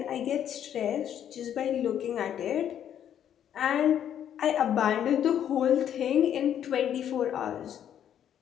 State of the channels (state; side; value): quieter; right; 9.8 dB